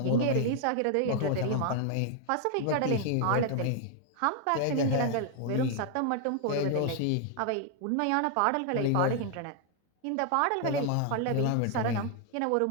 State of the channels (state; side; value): different; both; correlation 0.00